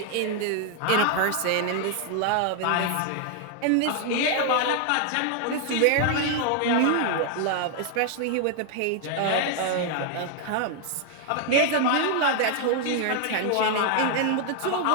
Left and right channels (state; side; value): different; both; correlation 0.00